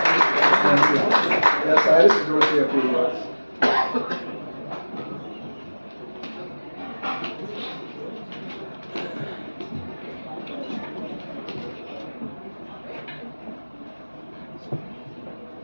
Thank you. Yeah, Cyrus is going to say a few words.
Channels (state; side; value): inverted; both; correlation -1.00